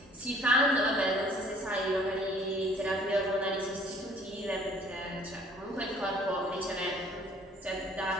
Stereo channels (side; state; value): both; normal; correlation 0.55